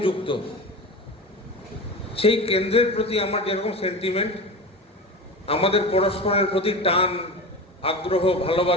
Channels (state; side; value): normal; both; correlation 0.28